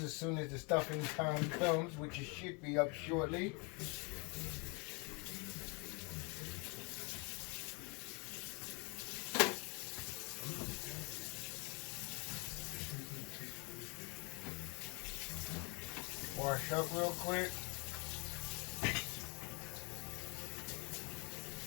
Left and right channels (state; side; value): quieter; right; 30.7 dB